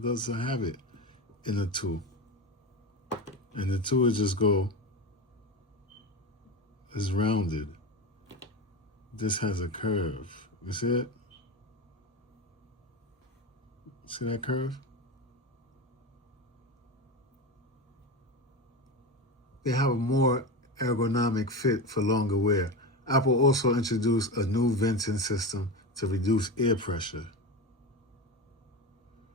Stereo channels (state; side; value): normal; both; correlation 0.22